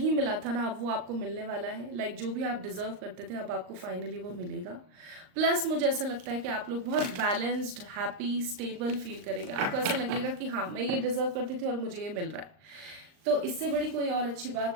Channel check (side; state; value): left; late; 39 ms